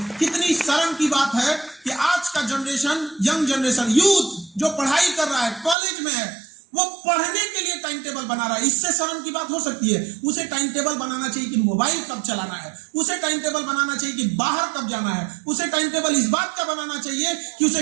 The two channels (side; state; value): left; drops out; at 5.8 s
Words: कितनी शर्म की बात है कि आज का जनरेशन, यंग जनरेशन, यूथ जो पढ़ाई कर रहा है, कॉलेज में है, वो पढ़ने के लिए टाइम टेबल बना रहा है। इससे शर्म की बात हो सकती है? उसे टाइम टेबल बनाना चाहिए कि मोबाइल कब चलाना है, उसे टाइम टेबल बनाना चाहिए कि बाहर कब जाना है, उसे टाइम टेबल इस बात का बनाना चाहिए कि